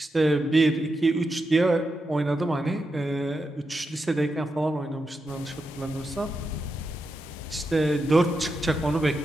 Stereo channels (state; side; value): normal; both; correlation 0.87